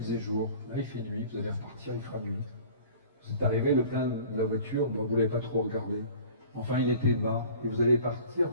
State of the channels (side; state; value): both; inverted; correlation -0.46